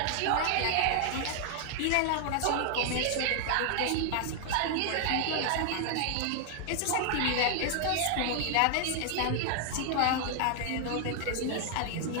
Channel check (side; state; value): both; different; correlation 0.00